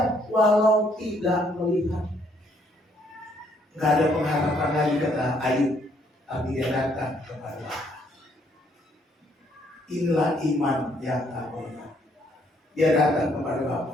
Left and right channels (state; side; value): normal; both; correlation 0.68